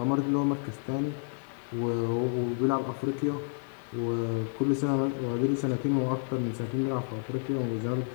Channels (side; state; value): right; silent; 58 dB below the other